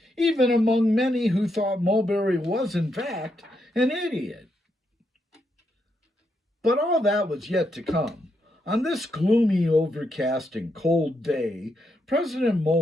even among many who thought Mulberry was, in fact, an idiot. But all that was yet to come. On this gloomy, overcast, and cold day, President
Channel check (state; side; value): normal; both; correlation 0.80